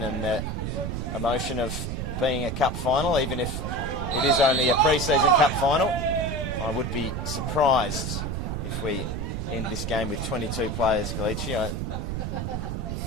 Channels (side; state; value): right; noise; rumble, 3 dB below the sound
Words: and the emotion of being a cup final, even if it is only a pre-season cup final, I would be surprised if we end this game with 22 players, Kalichi.